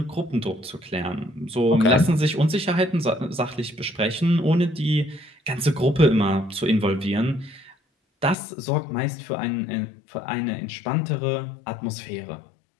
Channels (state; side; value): drops out; right; at 8.3 s